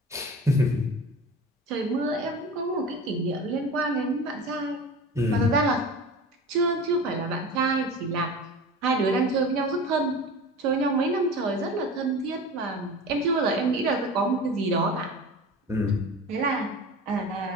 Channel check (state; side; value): normal; both; correlation 0.34